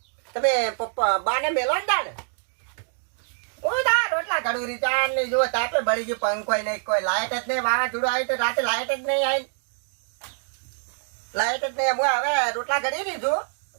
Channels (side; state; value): left; silent; digital silence